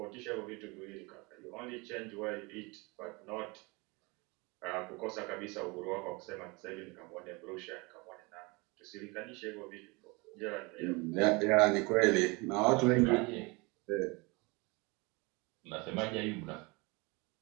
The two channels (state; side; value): quieter; left; 26.9 dB